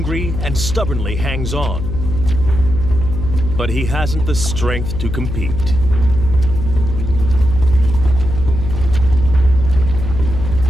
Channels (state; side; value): noise; left; hum, 5 dB below the sound